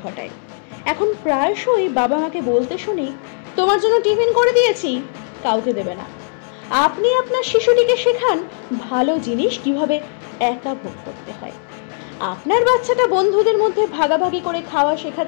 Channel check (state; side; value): silent; right; 66 dB below the other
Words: ঘটায়। এখন প্রায়শই বাবা মাকে বলতে শুনি, তোমার জন্য টিফিন করে দিয়েছি, কাউকে দেবে না। আপনি আপনার শিশুটিকে শেখান ভালো জিনিস কিভাবে একা ভোগ করতে হয়। আপনার বাচ্চাটা বন্ধুদের মধ্যে ভাগাভাগি করে খাওয়া শেখা